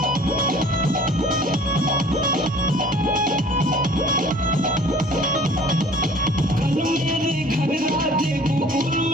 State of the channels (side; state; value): both; normal; correlation 0.50